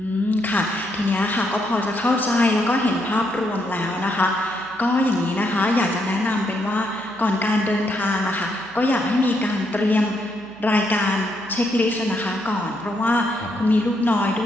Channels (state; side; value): noise; right; hum, 27 dB below the sound